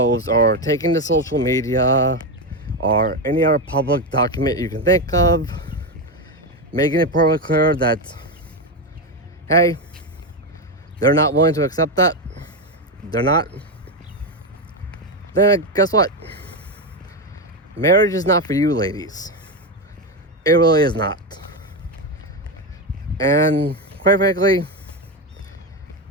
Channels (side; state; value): both; normal; correlation 0.12